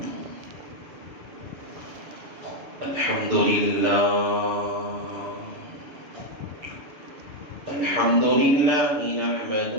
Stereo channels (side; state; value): left; late; 7.2 ms